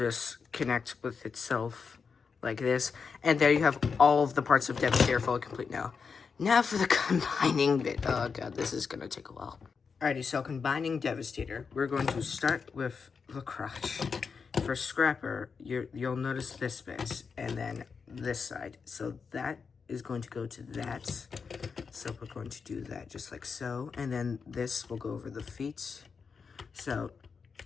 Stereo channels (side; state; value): right; quieter; 5.5 dB